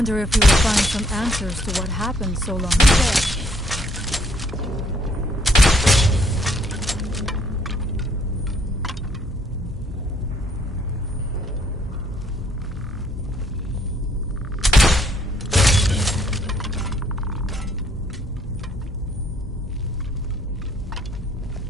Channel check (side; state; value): both; normal; correlation 0.65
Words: if we will find some answers to what happened so long ago.